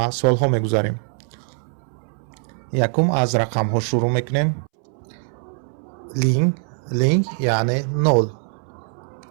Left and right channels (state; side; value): silent; left; 64 dB below the other